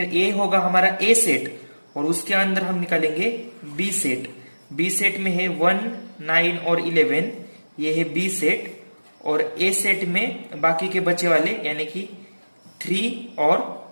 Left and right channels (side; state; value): both; inverted; correlation -1.00